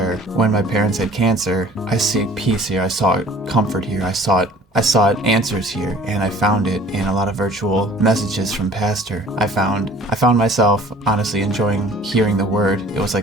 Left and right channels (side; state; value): both; normal; correlation 0.49